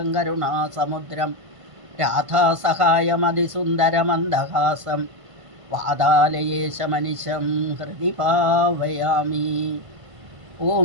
കരുണാസമുദ്രം രാധാസഹായമതിസുന്ദരമന്ദഹാസം വാതാലയേശമനിശം ഹൃദി ഭാവയാമി. ഓം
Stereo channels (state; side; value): late; left; 1.5 ms